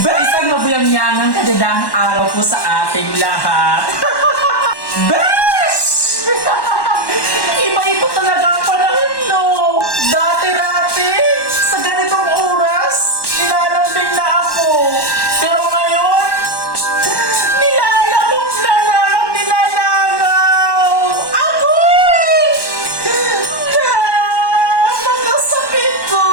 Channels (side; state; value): right; late; 1.1 ms